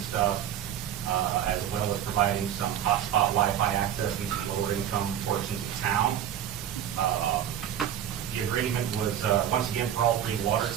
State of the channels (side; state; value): left; quieter; 10.1 dB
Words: as well as providing some hotspot Wi-Fi access in some lower income portions of town. The agreement was, once again, for all 3 water